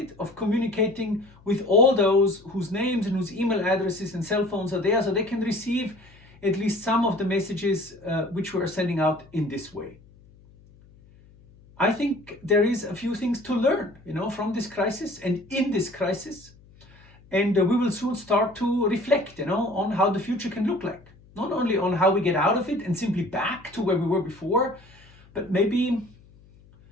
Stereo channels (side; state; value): left; noise; hum, 26 dB below the sound